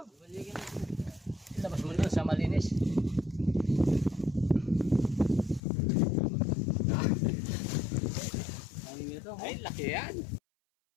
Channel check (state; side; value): drops out; right; at 5.6 s